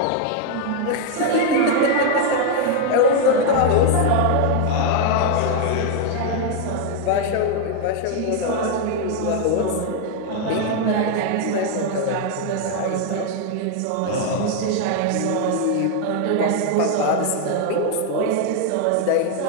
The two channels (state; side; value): different; both; correlation 0.01